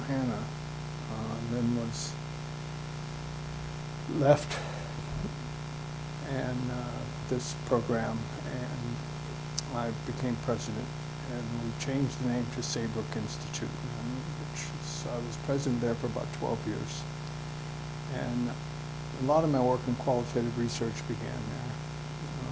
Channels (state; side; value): identical; both; correlation 1.00